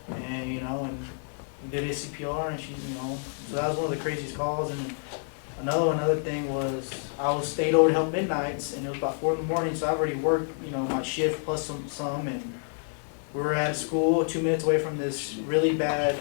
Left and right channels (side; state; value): right; silent; 59 dB below the other